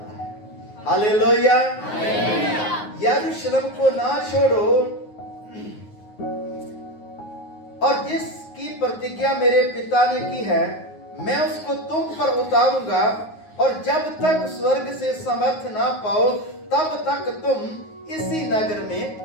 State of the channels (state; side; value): late; right; 9.5 ms